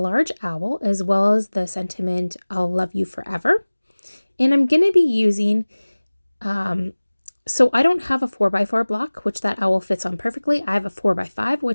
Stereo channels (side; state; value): both; inverted; correlation -1.00